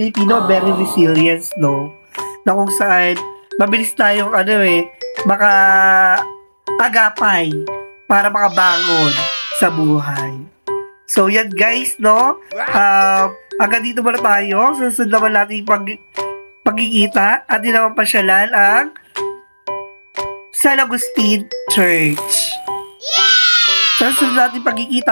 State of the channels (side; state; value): both; inverted; correlation -1.00